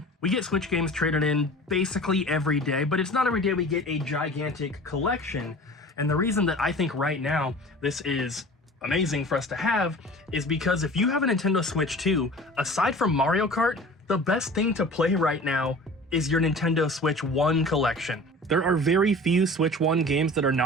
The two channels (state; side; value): normal; both; correlation 0.41